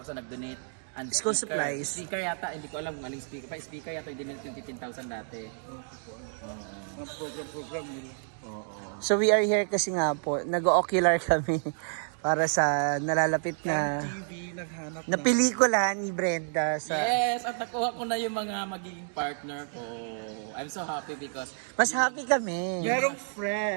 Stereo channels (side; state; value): left; silent; digital silence